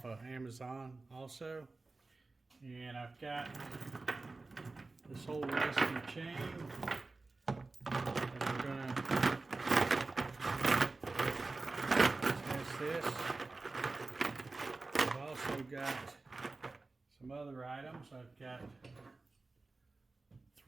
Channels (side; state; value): left; quieter; 3.5 dB